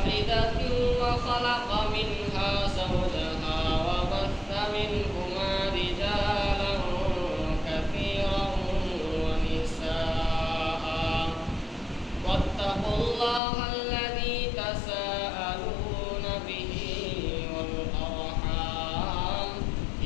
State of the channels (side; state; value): right; drops out; at 13.4 s